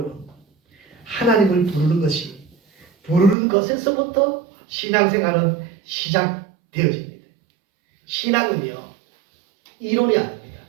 하나님을 부르는 것이, 부르는 것에서부터 신앙생활은 시작되어집니다. 신앙은요, 이론이 아닙니다.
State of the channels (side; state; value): left; drops out; at 3.4 s